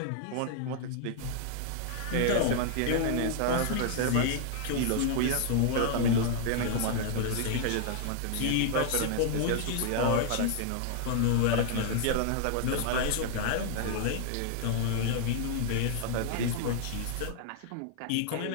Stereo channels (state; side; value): different; both; correlation 0.00